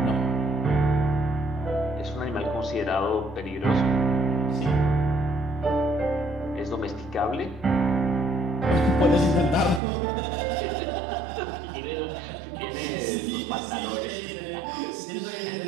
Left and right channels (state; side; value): drops out; left; at 9.8 s